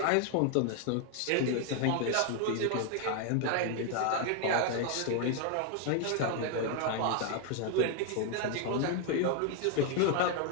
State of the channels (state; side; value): different; both; correlation 0.00